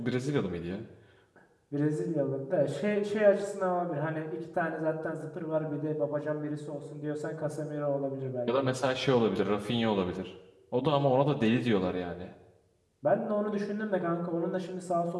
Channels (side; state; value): both; identical; correlation 1.00